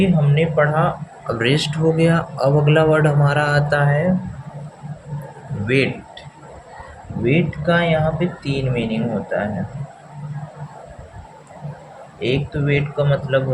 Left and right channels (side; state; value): both; identical; correlation 1.00